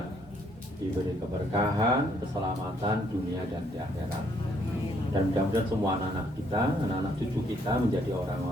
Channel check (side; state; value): both; normal; correlation 0.68